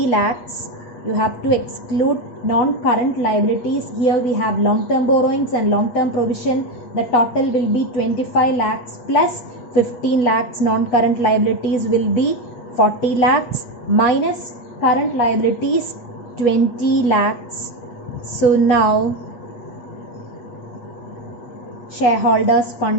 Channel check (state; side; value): late; right; 8.4 ms